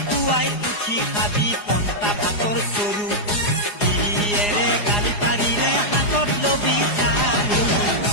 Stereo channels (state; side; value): late; right; 4.9 ms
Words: উঠি খাবি পন্তা ভাতৰ চৰু গিৰিয়েৰে গালি পাৰিলে হাতত লবি চাৰু